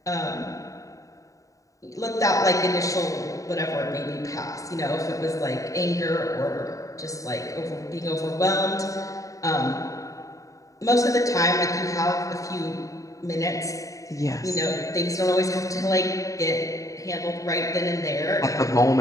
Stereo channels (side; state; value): right; late; 0.16 ms